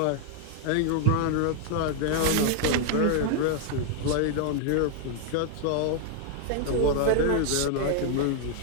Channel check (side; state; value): both; different; correlation 0.00